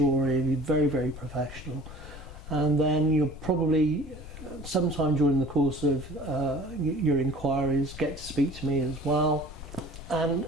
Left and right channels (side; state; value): left; noise; rumble, 14 dB below the sound